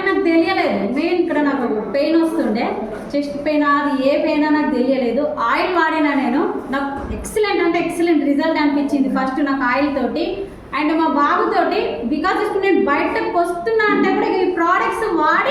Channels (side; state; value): both; identical; correlation 1.00